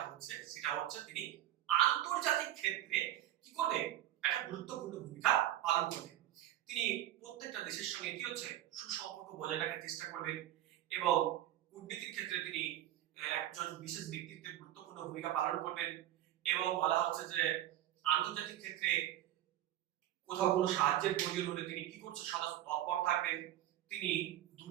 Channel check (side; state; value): left; quieter; 13.0 dB